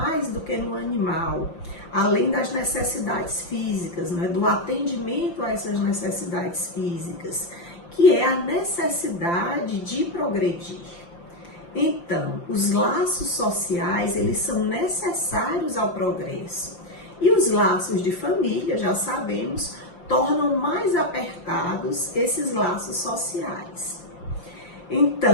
do que no animal, além das necessidades físicas, do atendimento a essas necessidades físicas, que é a necessidade de progredir. Então, os laços sociais, eles são necessários ao progresso. E os laços de família, já sabemos, tornam mais apertados esses laços sociais.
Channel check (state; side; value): late; right; 5.8 ms